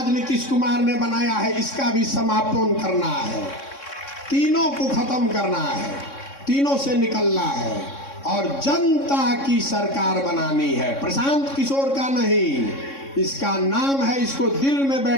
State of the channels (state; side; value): late; right; 3.6 ms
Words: नीतीश कुमार ने बनाया है इसका भी समापन करना है। तीनों को खत्म करना है, तीनों से निकलना है और जनता की सरकार बनानी है। प्रशांत किशोर का नहीं, इसका नाम है, इसको दिल में